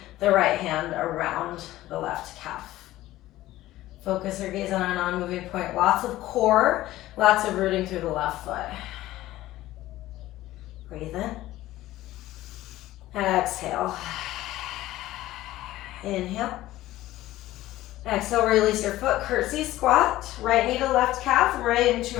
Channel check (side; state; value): right; quieter; 15.7 dB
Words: the right hand around the left calf. Focus your gaze on a non-moving point. Lots of core, lots of rooting through the left foot. Breathe in. And exhale. Inhale. Exhale, release your foot, curtsy squat. Right knee to left calf, right into